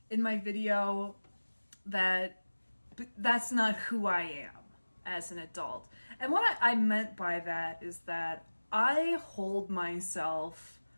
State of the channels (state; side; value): inverted; both; correlation -1.00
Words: in my video that that's not who I am as an adult. And what I meant by that is that I hold myself